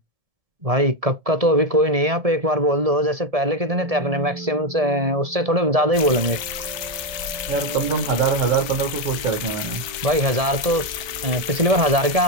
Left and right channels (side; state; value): left; late; 1.3 ms